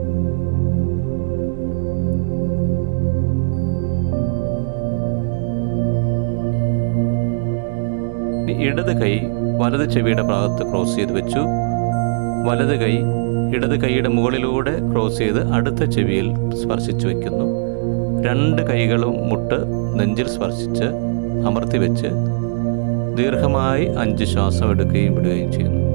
ഇടത് കൈ വലത് ചെവിയുടെ ഭാഗത്ത് ക്രോസ് ചെയ്ത് വെച്ചു. വലത് കൈ ഇടത് കൈയുടെ മുകളിലൂടെ ക്രോസ് ചെയ്ത് അടുത്ത ചെവിയിൽ സ്പർശിച്ചു വയ്ക്കുന്നു. 2 കൈകളും മുട്ട് നെഞ്ചിൽ സ്പർശിച്ച് അമർത്തി വെച്ച് ദീർഘമായി 5 ശ്വാസം എടുക്കുകയും വിടുകയും ചെയ്യുന്നു.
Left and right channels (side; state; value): left; silent; digital silence